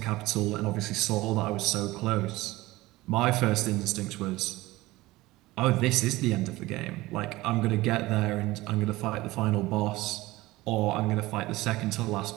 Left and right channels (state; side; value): quieter; left; 19.1 dB